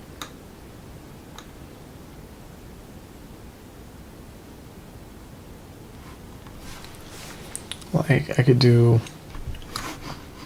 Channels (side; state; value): both; identical; correlation 1.00